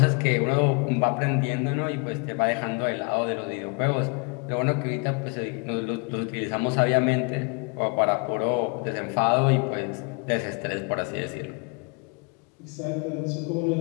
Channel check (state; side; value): quieter; right; 34.2 dB